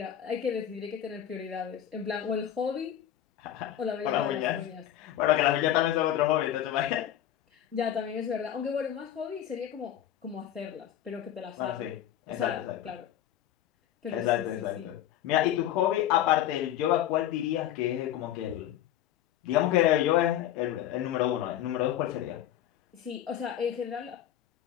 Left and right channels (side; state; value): right; quieter; 11.4 dB